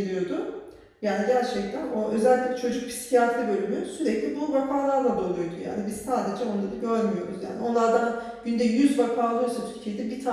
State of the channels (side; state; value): both; identical; correlation 1.00